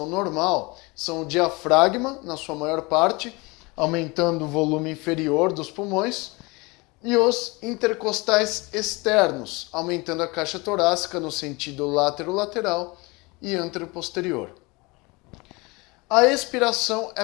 normal, são o diafragma, na sua maior parte, aumentando o volume inferior dos pulmões, e os intercostais externos, aumentando a caixa torácica no sentido látero-lateral e antero-posterior. A expiração é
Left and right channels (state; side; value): quieter; right; 25.5 dB